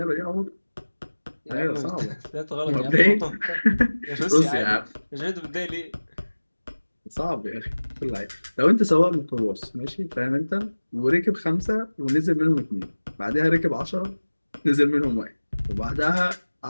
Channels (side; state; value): both; inverted; correlation -1.00